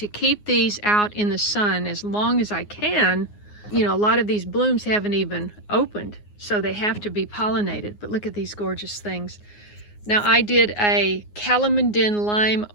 keep these out in the sun as long as I can. You know, a lot of these blooms haven't even opened, so they have to be pollinated. But look at these gorgeous things. Now I did a calamondin lime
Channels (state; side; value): late; right; 9.6 ms